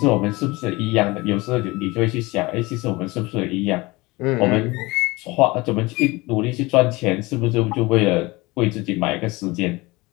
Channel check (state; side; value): quieter; right; 22.8 dB